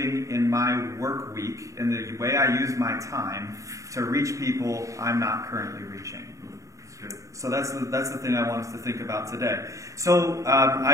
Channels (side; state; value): left; late; 0.16 ms